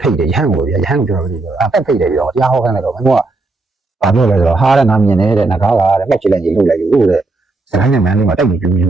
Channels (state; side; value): quieter; left; 3.3 dB